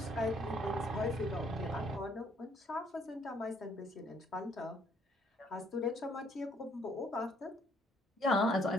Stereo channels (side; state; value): both; normal; correlation 0.65